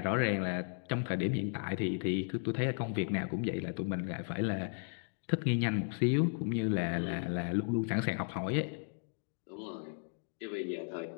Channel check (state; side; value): silent; right; digital silence